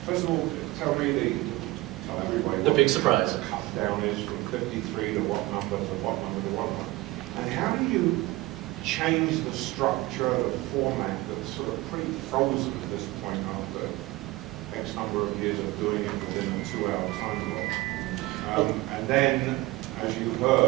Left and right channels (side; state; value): left; quieter; 20.1 dB